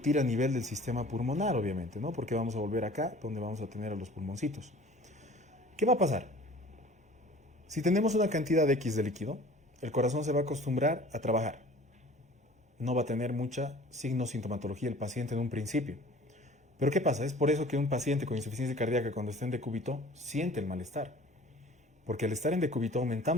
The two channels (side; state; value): both; normal; correlation 0.47